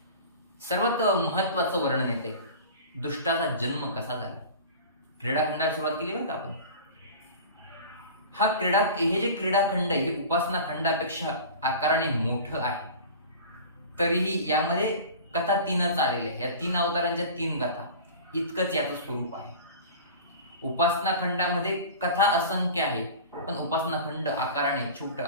सर्वात महत्वाचं वर्णन येते दुष्टाचा जन्म कसा झाला. क्रीडाखंडाला सुरुवात केली बरं का आपण. हे जे क्रीडाखंड आहे हे उपासना खंडापेक्षा आकाराने मोठं आहे. तरीही यामध्ये कथा 3च आलेल्या आहे. या 3 अवतारांच्या 3 कथा इतकंच याचं स्वरूप आहे. उपासना खंडामध्ये कथा असंख्य आहे, पण उपासना खंड आकाराने छोटं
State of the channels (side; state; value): both; inverted; correlation -0.37